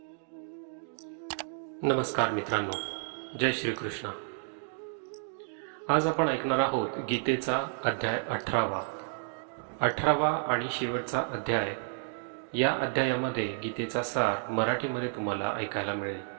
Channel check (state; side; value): silent; left; digital silence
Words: नमस्कार मित्रांनो, जय श्री कृष्ण। आज आपण ऐकणार आहोत गीतेचा अध्याय 18वा आणि शेवटचा अध्याय। या अध्यायामध्ये गीतेचा सार मराठीमध्ये तुम्हाला ऐकायला मिळेल।